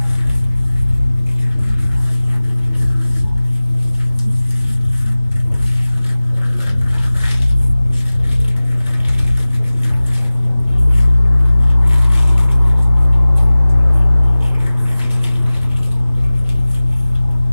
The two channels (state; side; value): inverted; both; correlation -0.98